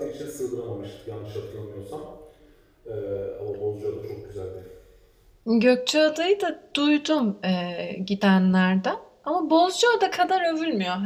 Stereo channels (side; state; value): both; identical; correlation 1.00